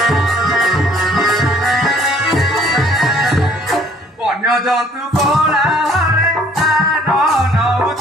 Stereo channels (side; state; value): both; normal; correlation 0.59